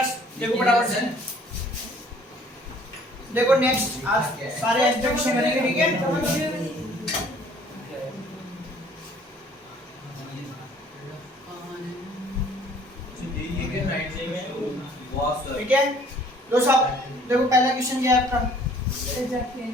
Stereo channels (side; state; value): both; normal; correlation 0.56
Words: देखो बराबर से देखो नेक्स्ट आज सारे एग्जीक्यूशन करेंगे ठीक है। ठीक है दोस्त साहब देखो पहला क्वेश्चन क्या है आपका